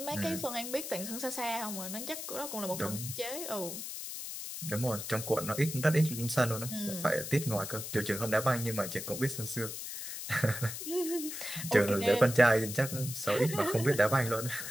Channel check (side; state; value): left; noise; hiss, 7 dB below the sound